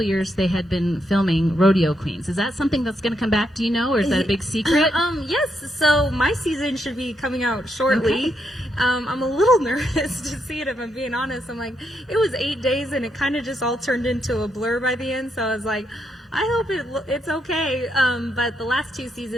of years they had been filming Rodeo Queens. Is that something that's going to come back? Do you know, or is that a big secret? Yes. So my season should be coming out shortly. Okay. I'm a little nervous to see it, if I'm being honest. I'm like, it was 8 days, and it kind of just all turned into a blur by the end. So I was like, I hope it's okay. But the last 2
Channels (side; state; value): both; normal; correlation 0.80